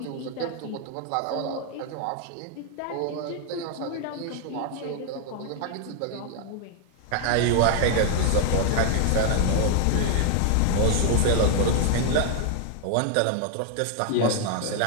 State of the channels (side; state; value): both; different; correlation 0.00